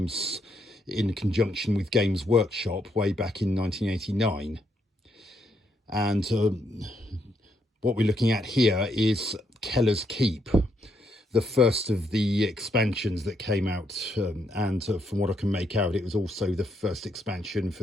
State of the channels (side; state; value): both; normal; correlation 0.76